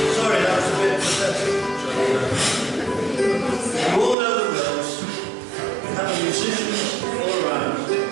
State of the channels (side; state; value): left; drops out; at 4.2 s